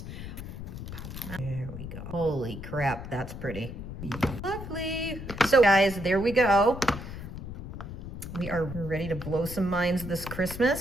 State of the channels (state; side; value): noise; left; rumble, 9 dB below the sound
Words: There we go. Holy crap, that's pretty. Lovely. So guys, there we go. We are ready to blow some minds this